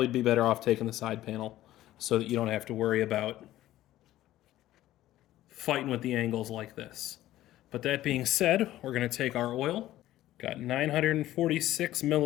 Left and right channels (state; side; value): quieter; right; 14.5 dB